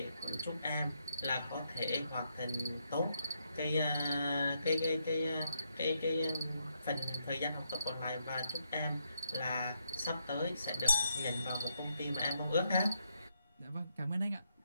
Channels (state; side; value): inverted; both; correlation -0.77